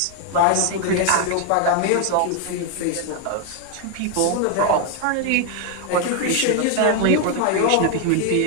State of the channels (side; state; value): both; different; correlation 0.00